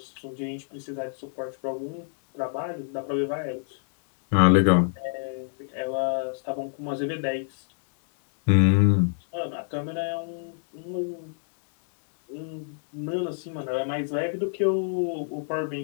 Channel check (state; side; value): silent; right; 60 dB below the other